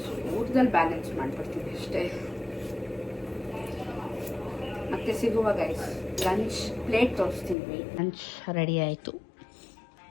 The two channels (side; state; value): right; drops out; at 7.6 s